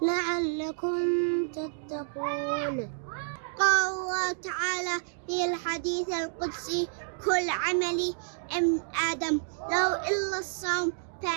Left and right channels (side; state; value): left; silent; digital silence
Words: لعلكم تتقون. قال الله تعالى في الحديث القدسي: كل عملي ابن آدم لو إلا الصوم